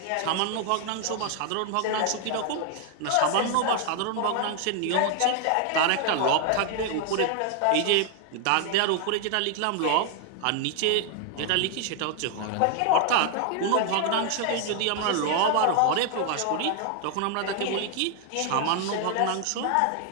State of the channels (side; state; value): both; different; correlation 0.00